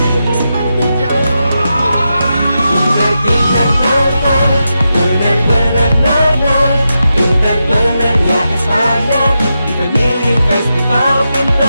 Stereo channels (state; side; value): inverted; both; correlation -0.88